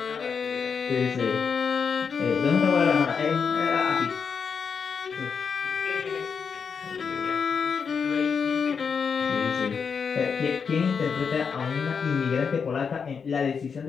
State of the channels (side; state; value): right; quieter; 6.1 dB